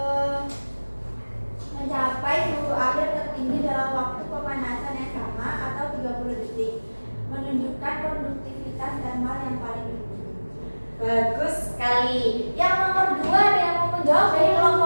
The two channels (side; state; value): both; inverted; correlation -1.00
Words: mencapai suhu akhir tertinggi dalam waktu pemanasan yang sama atau 30 detik, menunjukkan konduktivitas thermal yang paling tinggi. Bagus sekali. Yang nomor 2 ada yang mau menjawab dari